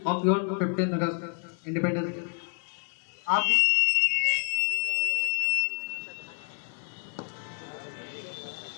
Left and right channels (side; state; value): right; quieter; 37.5 dB